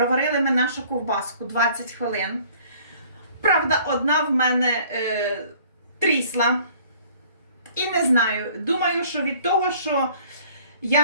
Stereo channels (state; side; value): inverted; both; correlation -0.55